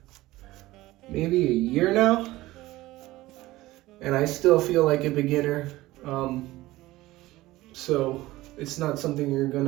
maybe a year now, and I still feel like a beginner. So it's not something you're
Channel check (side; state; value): left; quieter; 17.8 dB